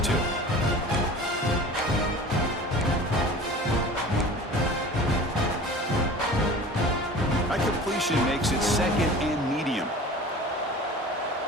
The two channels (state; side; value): normal; both; correlation 0.40